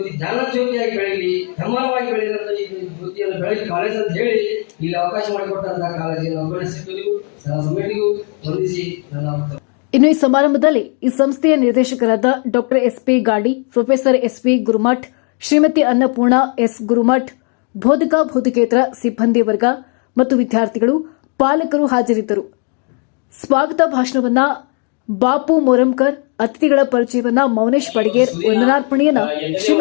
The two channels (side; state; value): right; quieter; 39.2 dB